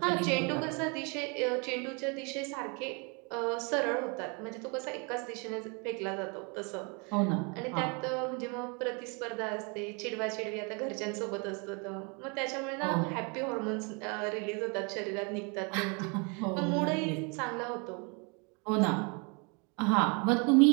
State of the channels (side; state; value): left; quieter; 32.8 dB